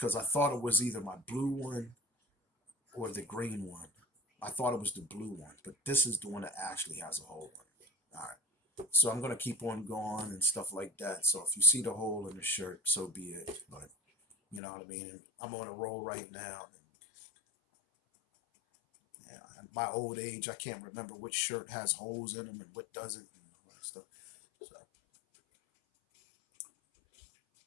I thought it was either my blue one or the green one. I thought it was the blue one, but this is the one that actually has a hole in it. All right. So I'm gonna keep on going and stuff like that. So if you see the hole in the shirt, so be it. But you know what I mean. I'm on a roll right now. And, yeah, at my old age, I can't remember which shirt has holes in them and what doesn't, and all that stuff. So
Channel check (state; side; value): drops out; right; at 14.6 s